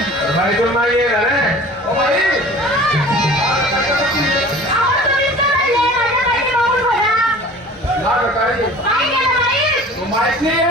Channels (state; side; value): normal; both; correlation 0.44